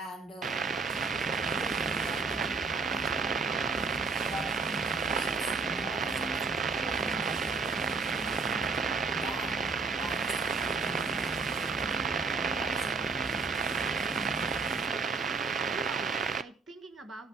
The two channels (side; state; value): left; quieter; 4.6 dB